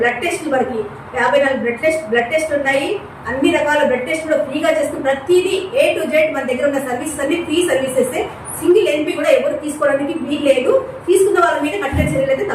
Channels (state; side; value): identical; both; correlation 1.00